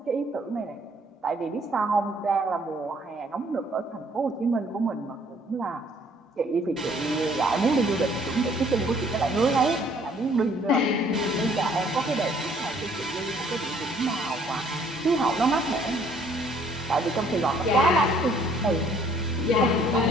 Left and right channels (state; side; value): normal; both; correlation 0.61